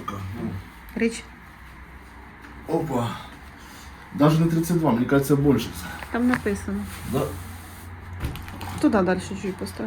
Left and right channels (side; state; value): both; identical; correlation 1.00